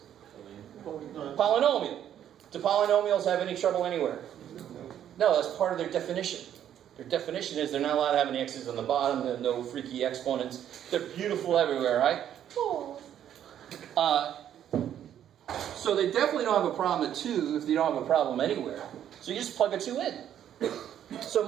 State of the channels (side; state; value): left; quieter; 10.3 dB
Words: Polynomial. Do polynomials have any trouble anywhere? No, that's part of their definition. Their definition is they're not allowed to have any x's on the bottom. There are no freaky exponents. They're beautiful everywhere, right? So they definitely don't have a problem at 2 if they don't have a problem anywhere. So you just plug a 2 in. So